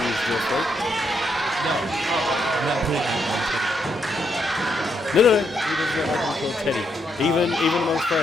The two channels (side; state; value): both; normal; correlation 0.77